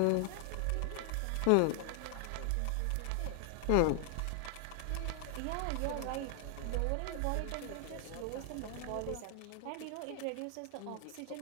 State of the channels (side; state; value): both; different; correlation 0.00